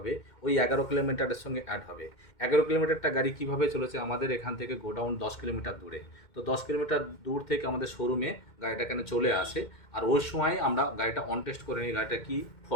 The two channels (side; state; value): right; late; 2.1 ms